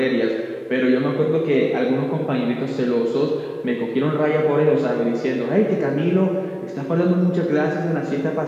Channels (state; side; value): identical; both; correlation 1.00